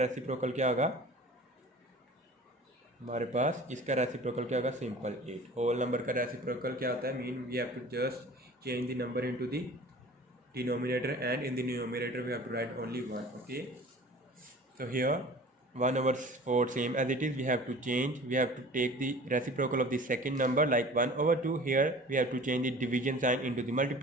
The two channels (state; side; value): normal; both; correlation 0.43